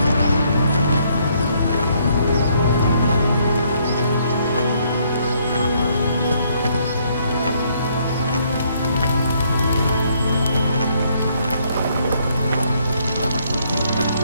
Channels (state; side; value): inverted; both; correlation -0.69